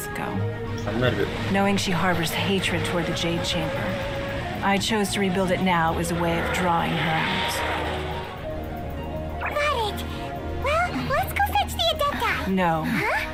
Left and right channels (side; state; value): both; identical; correlation 1.00